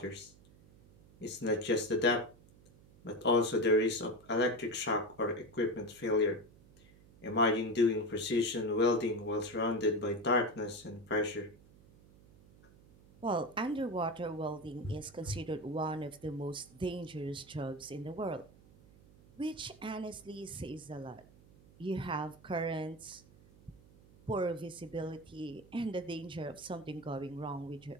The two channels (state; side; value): noise; right; hum, 24 dB below the sound